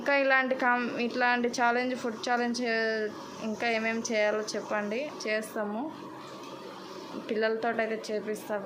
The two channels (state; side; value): identical; both; correlation 1.00